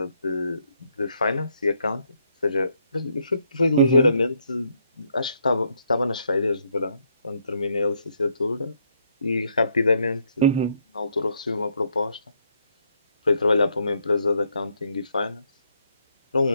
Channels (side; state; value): both; inverted; correlation -0.73